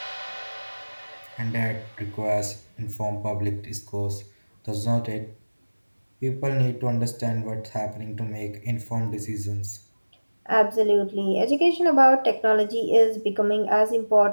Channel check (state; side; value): inverted; both; correlation -1.00